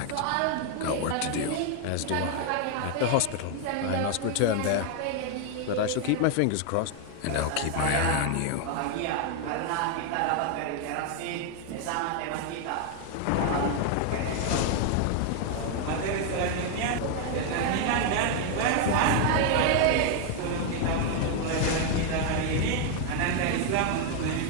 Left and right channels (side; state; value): both; different; correlation 0.00